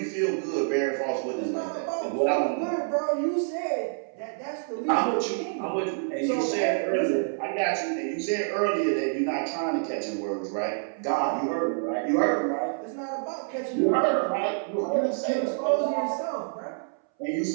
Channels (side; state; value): left; silent; 60 dB below the other